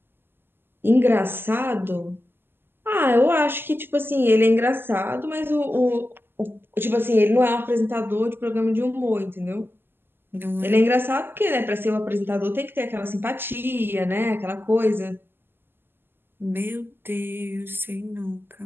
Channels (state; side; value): late; left; 0.10 ms